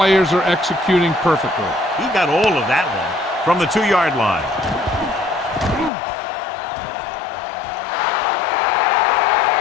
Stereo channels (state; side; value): drops out; right; at 5.9 s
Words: are executing perfectly. He got all of that one from the 2-yard line.